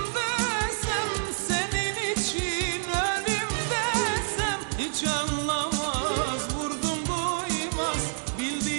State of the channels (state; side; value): silent; left; digital silence